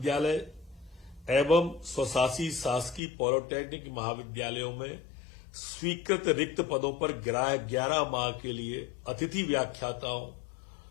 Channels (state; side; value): drops out; right; at 3.0 s